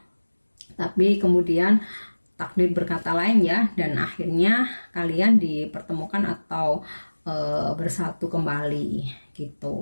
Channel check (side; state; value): both; inverted; correlation -1.00